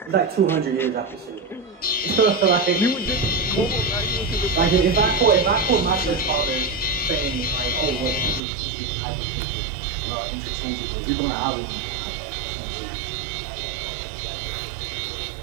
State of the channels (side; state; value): left; drops out; at 8.4 s